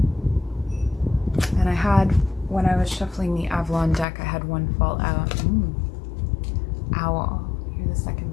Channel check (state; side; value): drops out; right; at 4.0 s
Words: And I had, when I was shuffling the Avalon deck, I had one fall out. Owl. You're the